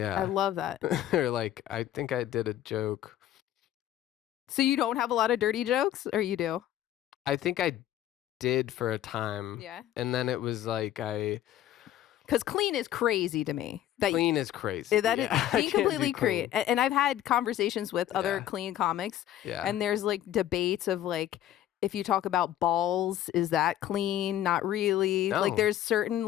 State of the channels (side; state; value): right; quieter; 12.3 dB